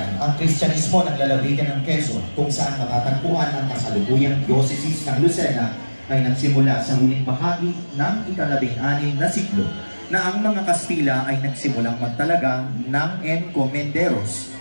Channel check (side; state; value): both; inverted; correlation -1.00